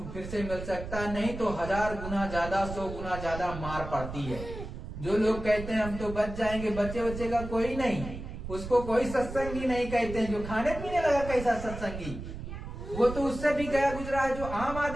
फिर से मिल सकता है। नहीं तो 1000 गुना ज्यादा, 100 गुना ज्यादा मार पड़ती है। जो लोग कहते हैं हम तो बच जाएंगे, बच्चे का कोई नहीं, उसको कोई सत्संगी नहीं कहते हैं। जो खाने पीने लगा कैसा सत्संगी, वो तो उससे भी गया गुजरा है। जो आम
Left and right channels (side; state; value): right; noise; rumble, 9 dB below the sound